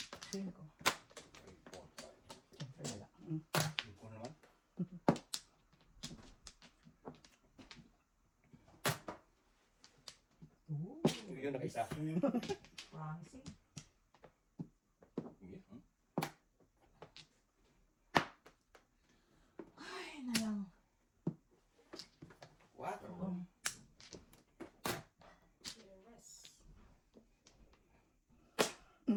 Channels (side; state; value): both; identical; correlation 1.00